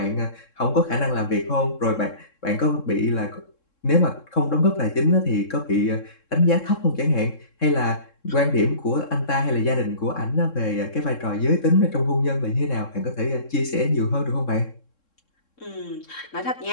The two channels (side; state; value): right; late; 3.7 ms